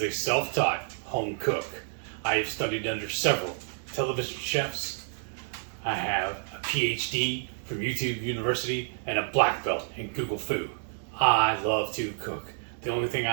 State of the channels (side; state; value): left; silent; digital silence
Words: a self-taught home cook. I have studied under several television chefs. I have a PhD from YouTube University and a black belt in Google Food. I love to cook. The only thing